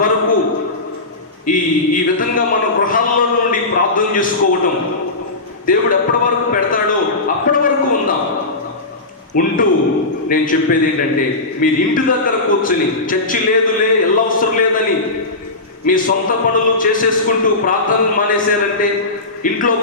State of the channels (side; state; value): right; quieter; 3.1 dB